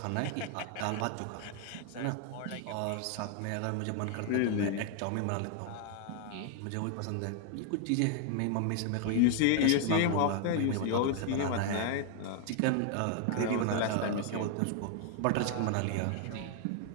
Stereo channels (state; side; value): different; both; correlation 0.00